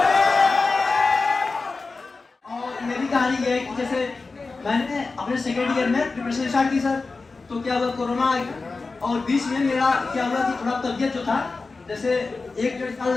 कहानी ये है कि जैसे मैंने अपने सेकेंड ईयर में प्रिपरेशन स्टार्ट की सर, तो क्या हुआ कोरोना और बीच में मेरा क्या हुआ कि थोड़ा तबियत जो था जैसे 1-1.5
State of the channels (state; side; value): quieter; right; 3.9 dB